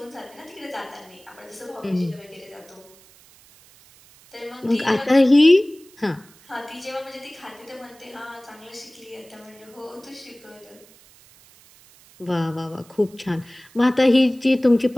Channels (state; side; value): noise; right; hiss, 26 dB below the sound